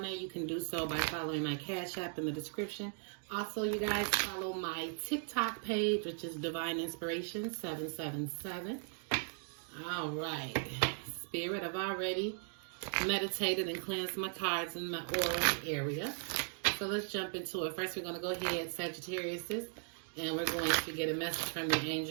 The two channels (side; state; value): left; silent; 53 dB below the other